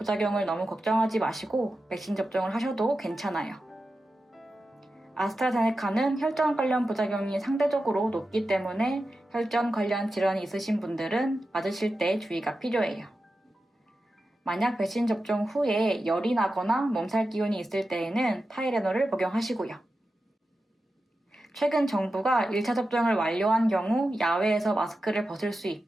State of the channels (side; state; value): both; normal; correlation 0.92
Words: 너무 걱정하지 마시고 백신 접종을 하셔도 괜찮아요. 아스트라제네카는 혈전 관련 부작용이 상대적으로 높기 때문에 혈전 관련 질환이 있으신 분들은 맞으실 때 주의가 필요해요. 만약 백신 접종 후에 열이 나거나 몸살 기운이 있을 때에는 타이레놀을 복용하시고요. 최근 정부가 1차 접종을 완료한 경우 야외에서 마스크를 벗을 수